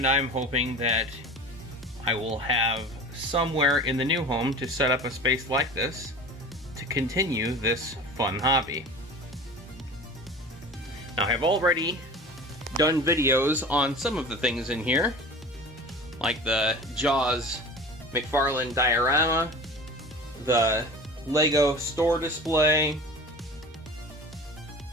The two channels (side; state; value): both; normal; correlation 0.38